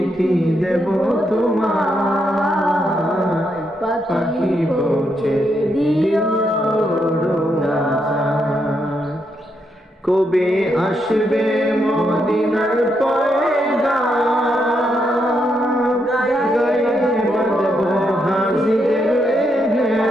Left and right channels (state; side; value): normal; both; correlation 0.79